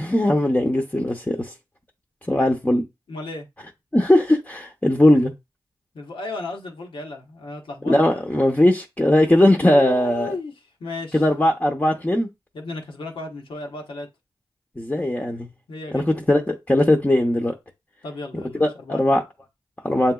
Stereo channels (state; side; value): normal; both; correlation 0.93